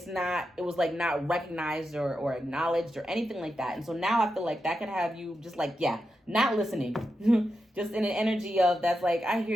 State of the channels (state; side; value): normal; both; correlation 0.88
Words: was like not recognized or acknowledged or anything like that. And so now I feel like that could have you just like, yeah, not listening. Just in an energy of that's like, I hear